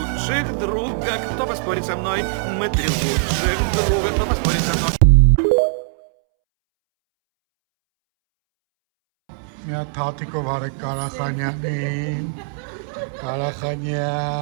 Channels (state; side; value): silent; left; 65 dB below the other